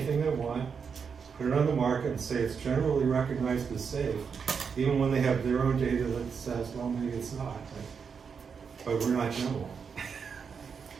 they want, put it on the market and say it's generally recognized as safe, even when they have their own data that says, well, maybe it's not, but we're not general.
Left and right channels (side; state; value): left; quieter; 6.2 dB